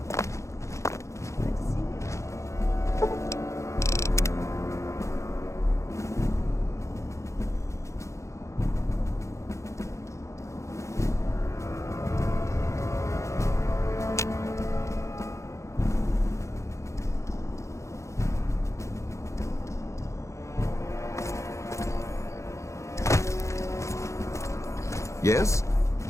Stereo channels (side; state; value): right; late; 0.14 ms